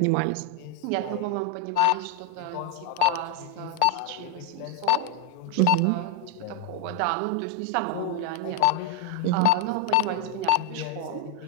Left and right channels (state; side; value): different; both; correlation 0.01